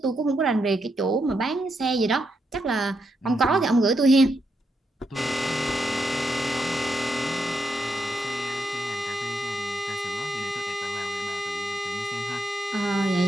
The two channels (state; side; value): normal; both; correlation 0.82